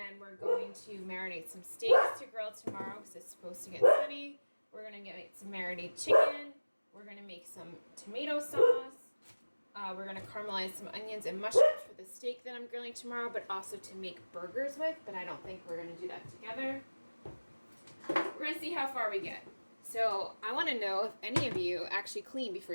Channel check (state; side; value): inverted; both; correlation -1.00